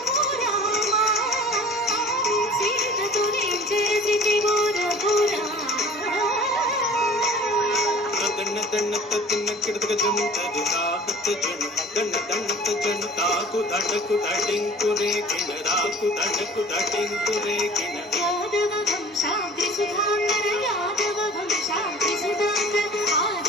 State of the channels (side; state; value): both; normal; correlation 0.45